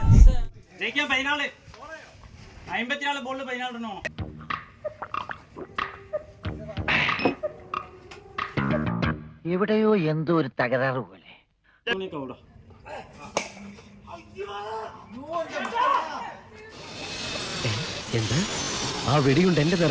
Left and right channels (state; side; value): identical; both; correlation 1.00